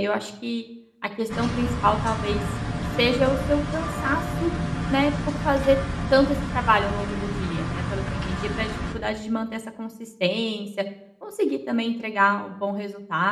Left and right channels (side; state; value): both; identical; correlation 1.00